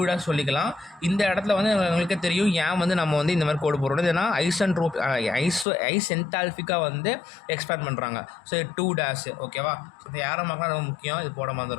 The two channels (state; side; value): drops out; right; at 5.7 s